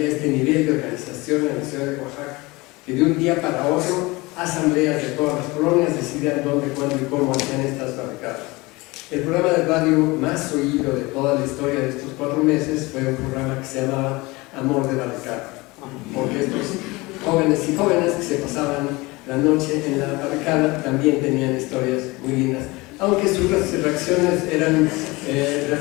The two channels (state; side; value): quieter; right; 23.0 dB